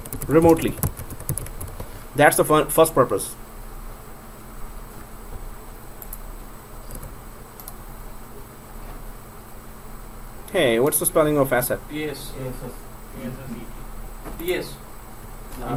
remotely, that's the first purpose. Hey, what's the spelling of asset? Yes. Yes, yes. Yes.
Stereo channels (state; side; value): identical; both; correlation 1.00